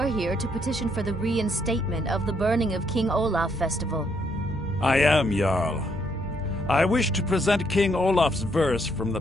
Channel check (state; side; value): normal; both; correlation 0.72